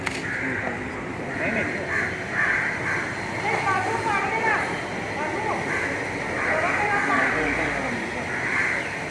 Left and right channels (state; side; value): identical; both; correlation 1.00